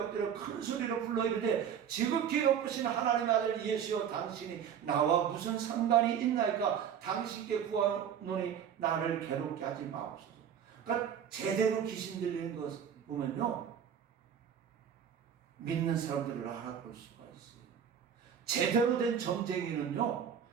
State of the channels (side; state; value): left; quieter; 8.4 dB